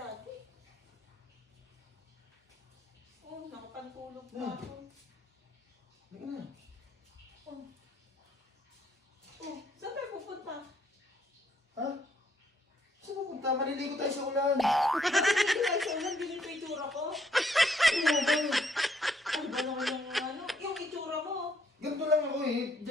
Oh, nakapantulog pa Na. ako. Hindi na. Oh, saan tayo pupunta? Ha? Saan pupunta? Maliligo tayo sa ulan. Hindi tayo sa ulan, ganito yung itsura ko. Ano ba? Ano ba naman yung itsura mo? Ganito lang ako eh.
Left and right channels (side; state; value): both; normal; correlation 0.69